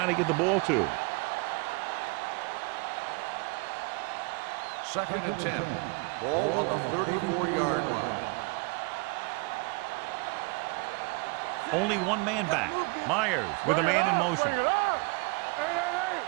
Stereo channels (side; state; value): left; quieter; 29.1 dB